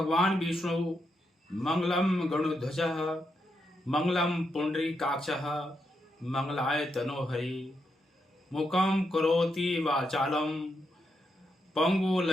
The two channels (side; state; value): both; normal; correlation 0.82